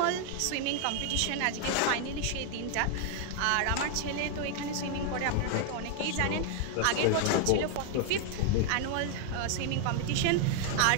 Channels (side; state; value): both; different; correlation 0.00